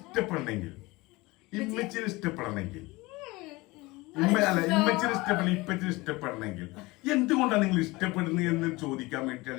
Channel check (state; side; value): quieter; right; 22.5 dB